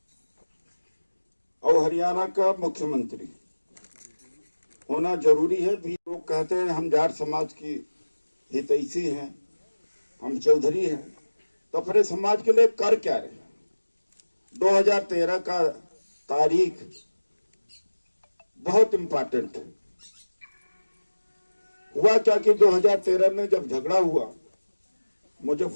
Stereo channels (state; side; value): inverted; both; correlation -1.00